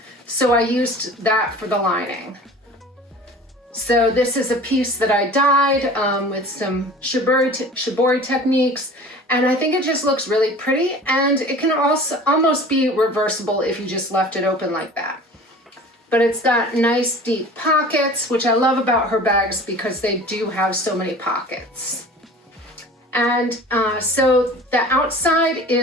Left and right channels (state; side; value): normal; both; correlation 0.42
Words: so I used that for the lining. So this is a piece that I dyed with some shibori techniques, and I think it just looks really pretty, and it can also almost be reversible if you just left it open like that. But it's got nice deep pockets, which I love about her bags because they do have so many pockets. And so the outside